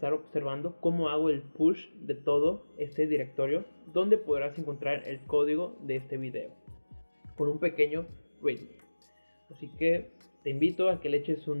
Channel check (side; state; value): both; inverted; correlation -1.00